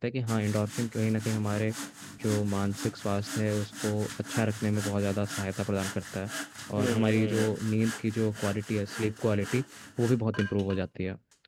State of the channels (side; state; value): both; identical; correlation 1.00